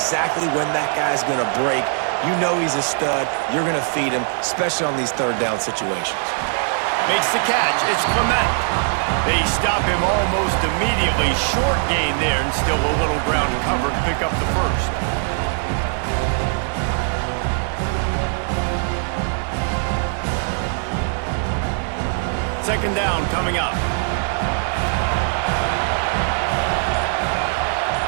when that guy's going to break. You know he's a stud. You're going to feed him, especially on these 3rd down situations. Makes the catch. It's Clement. They stop him almost immediately. Short gain there, and still a little ground to cover to pick up the first. Second down coming up.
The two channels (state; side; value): silent; left; 57 dB below the other